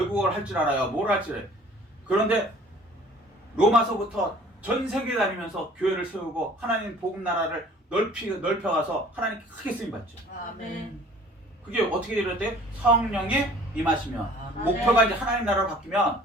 할 줄 알아요. 뭘 할 줄 알아요. 그런데 로마서부터 전 세계 다니면서 교회를 세우고 하나님 복음 나라를 넓혀가서 하나님 크게 쓰임받죠. 아멘. 그게 어떻게 이럴 성령이 임하시면, 아멘. 목표가 이제 하나님 나라로 바뀌면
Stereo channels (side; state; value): both; normal; correlation 0.51